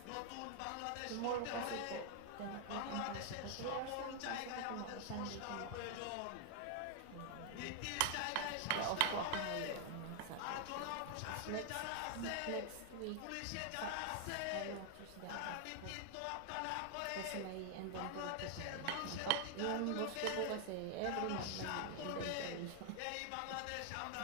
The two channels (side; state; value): both; different; correlation 0.00